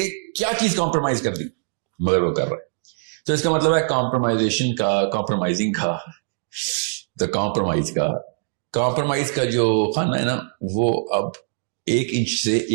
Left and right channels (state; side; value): silent; left; digital silence